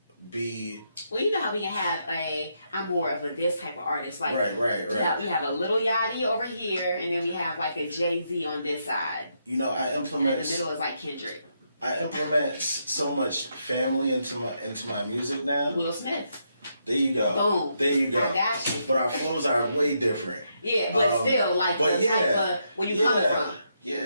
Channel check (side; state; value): both; inverted; correlation -0.79